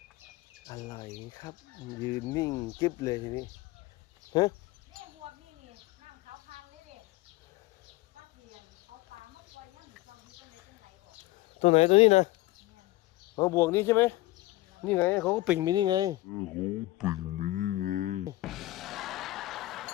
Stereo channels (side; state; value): right; quieter; 18.3 dB